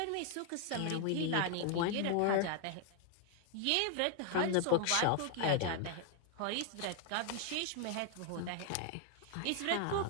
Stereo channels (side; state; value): both; different; correlation 0.00